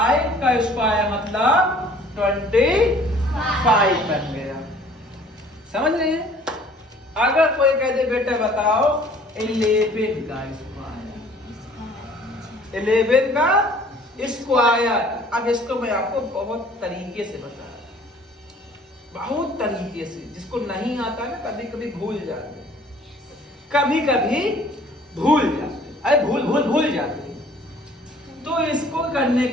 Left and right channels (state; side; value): normal; both; correlation 0.54